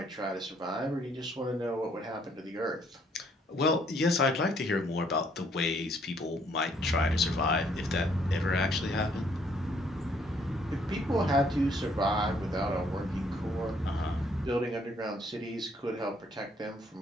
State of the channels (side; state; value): both; normal; correlation 0.66